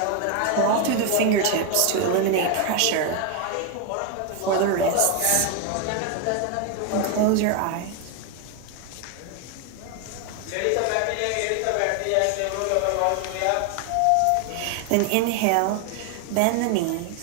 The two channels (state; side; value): different; both; correlation 0.01